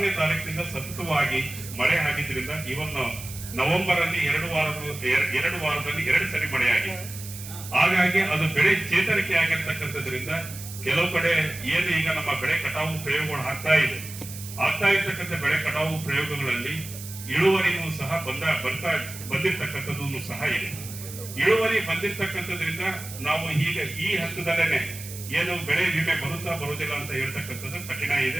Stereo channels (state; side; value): noise; right; hiss, 12 dB below the sound